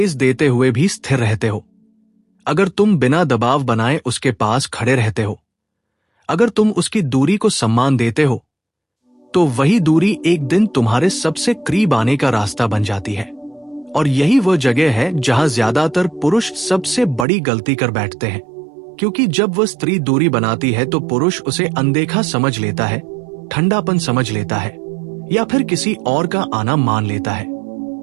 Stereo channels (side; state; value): left; drops out; at 17.2 s